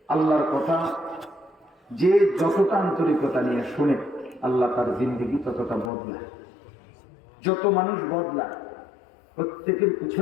আল্লাহর কথা যে যতটা আন্তরিকতা নিয়ে শুনে আল্লাহ তার জিন্দেগি ততটা বদলায়। যত মানুষ বদলায় প্রত্যেকের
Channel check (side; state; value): right; drops out; at 5.9 s